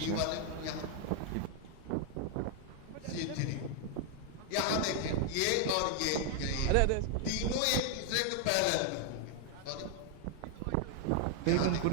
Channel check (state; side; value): different; both; correlation 0.00